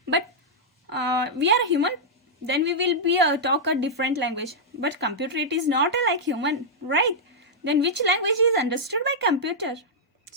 But we are human. Then we will be talk a different language. But computer, it is not like human, right? Then which language is understood by computer?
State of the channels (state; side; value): normal; both; correlation -0.08